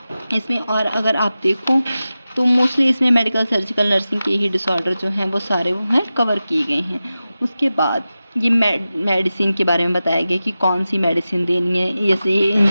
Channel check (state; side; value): inverted; both; correlation -0.94